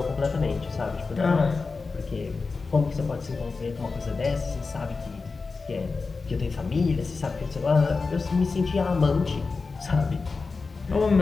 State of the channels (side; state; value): right; quieter; 4.3 dB